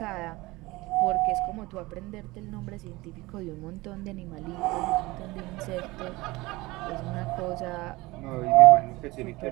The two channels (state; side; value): quieter; left; 21.2 dB